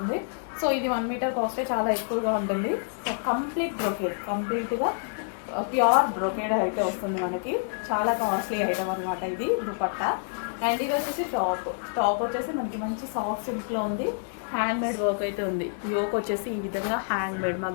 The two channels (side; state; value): right; silent; digital silence